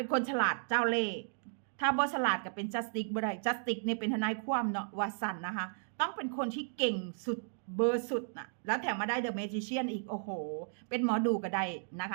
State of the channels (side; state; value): left; silent; digital silence